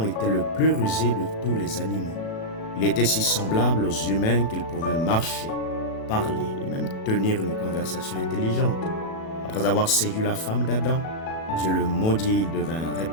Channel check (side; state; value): right; late; 37 ms